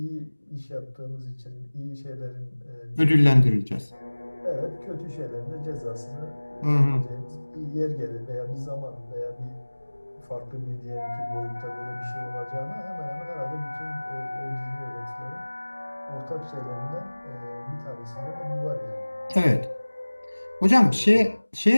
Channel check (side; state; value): both; inverted; correlation -1.00